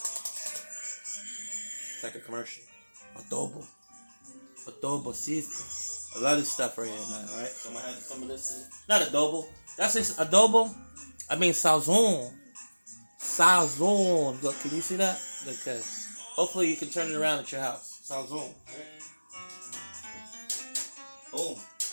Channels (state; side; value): inverted; both; correlation -1.00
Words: it's like a commercial, adobo seasoning. I love this stuff right here, man. All right, so I'm gonna add some of this in. Not adobo. That's it. Adobo. I mean sazon. Sazon. Look, can you see that? Okay. Hopefully you can turn it around at your house. Sazon. Right? Boom.